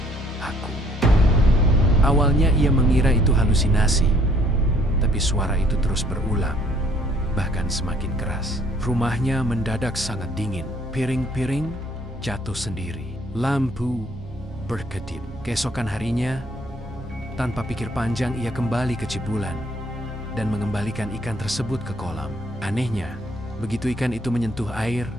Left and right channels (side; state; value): both; normal; correlation 0.62